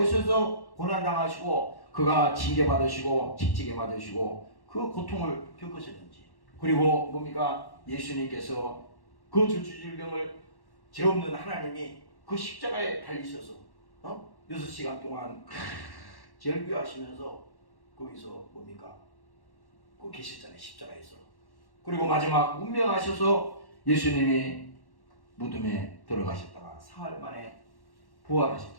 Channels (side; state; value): right; late; 1.1 ms